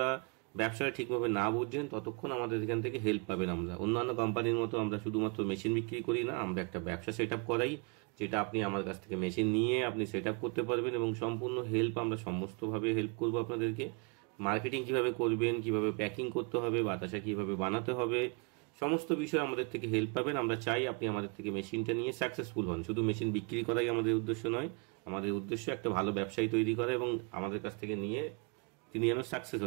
ব্যবসাটা ঠিকভাবে না বুঝছেন, ততক্ষণ আমাদের এখান থেকে হেল্প পাবেন। আমরা অন্যান্য কোম্পানির মতো আমরা শুধুমাত্র মেশিন বিক্রি করি না, আমরা একটা ব্যবসা সেট আপ করাই, যেটা আপনি আমার কাছ থেকে মেশিন নিয়ে আপনি সেট আপ করতে পারবেন এবং সম্পূর্ণ হেল্প আমরা সমস্তভাবে হেল্প করবো আপনাদেরকে। মার্কেটিং কিভাবে করবেন, কিভাবে প্যাকিং করতে হবে, বাতাসা কিভাবে বানাতে হবে, সমস্ত বিষয়ে আমাদের থেকে হেল্প পাবেন। আমরা চাই আপনি আমাদের থেকে মেশিনটা নিয়ে সাকসেসফুল হন। শুধু মেশিন বিক্রি করাই আমাদের উদ্দেশ্য নয়, আমাদের উদ্দেশ্য একটা ভালো ব্যবসায়ী তৈরি করা এবং আমাদের কাছ থেকে নিয়ে তিনি যেন সাকসেস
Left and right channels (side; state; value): left; quieter; 33.3 dB